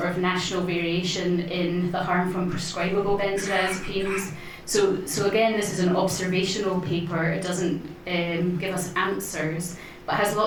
of national variation in the harm from prescribable benzodiazepines. So again, this is an observational paper. It doesn't give us answers, but has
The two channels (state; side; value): identical; both; correlation 1.00